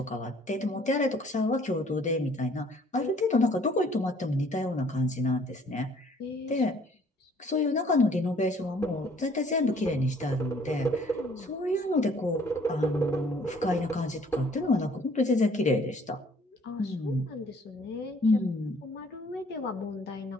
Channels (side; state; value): both; normal; correlation 0.58